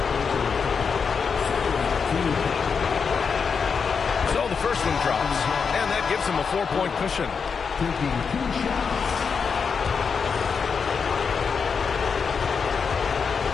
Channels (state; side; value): quieter; right; 5.8 dB